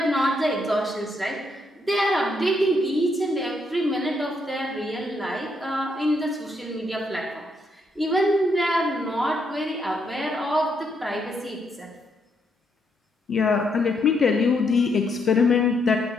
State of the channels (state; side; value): normal; both; correlation 0.76